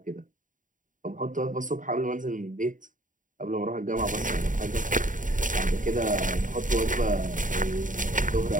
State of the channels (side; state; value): left; late; 0.38 ms